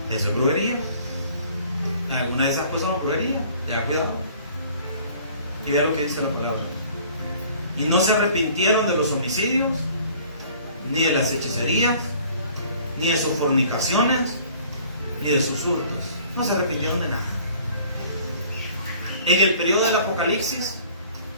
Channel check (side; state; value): both; inverted; correlation -0.52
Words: Eso es brujería. Alguna de esas cosas es brujería. Tengan cuidado. Y vean lo que dice la palabra. Y no se arrepintieron de los homicidios, ni de las hechicerías, ni de sus fornicaciones, ni de sus hurtos. No se arrepintieron de nada. En el periodo del Apocalipsis,